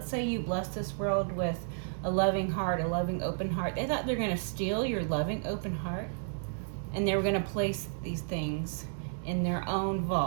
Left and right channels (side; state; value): left; silent; digital silence